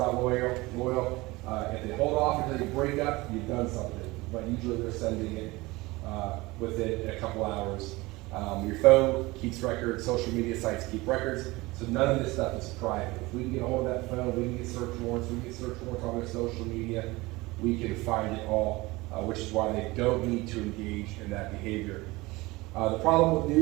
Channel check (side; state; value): left; quieter; 21.6 dB